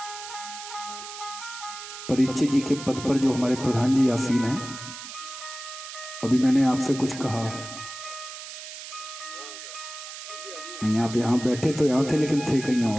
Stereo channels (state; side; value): noise; right; hiss, 11 dB below the sound